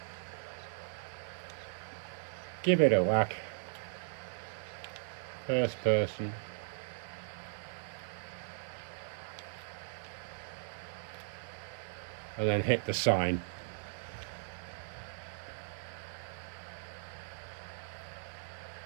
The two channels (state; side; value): silent; left; 52 dB below the other